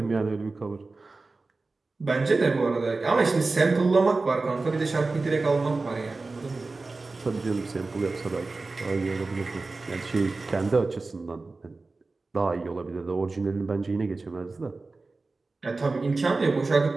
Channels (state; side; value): quieter; left; 3.6 dB